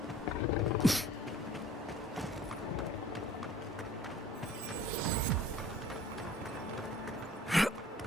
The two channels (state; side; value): normal; both; correlation 0.50